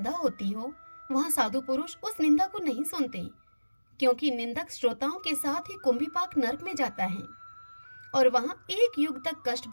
होती हो वहाँ साधु पुरुष उस निंदा को नहीं सुनते, क्योंकि निंदक श्रोताओं के साथ ही कुंभीपाक नरक में जाता है और वहाँ एक युग तक कष्ट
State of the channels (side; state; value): both; inverted; correlation -1.00